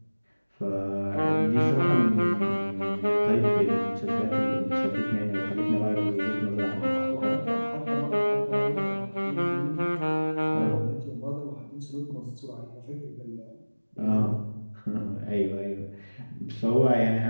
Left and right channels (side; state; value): both; inverted; correlation -1.00